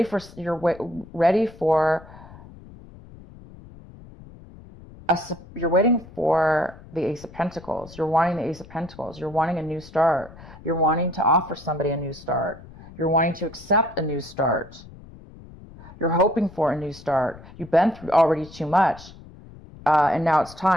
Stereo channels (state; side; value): noise; left; rumble, 19 dB below the sound